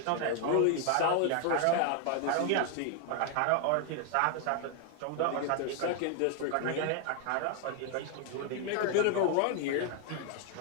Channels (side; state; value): both; different; correlation 0.00